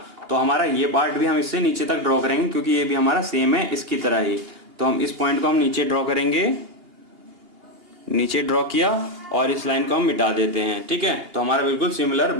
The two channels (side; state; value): left; late; 2.8 ms